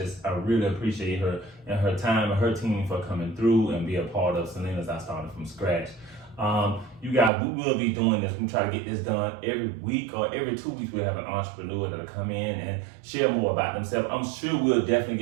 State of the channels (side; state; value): left; drops out; at 7.3 s